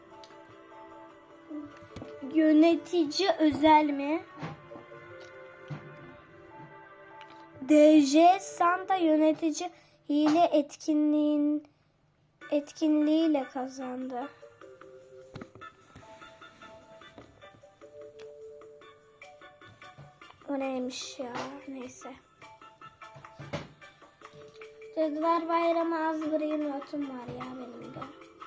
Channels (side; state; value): both; identical; correlation 1.00